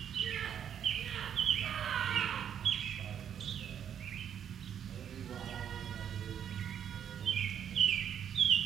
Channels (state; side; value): quieter; left; 8.9 dB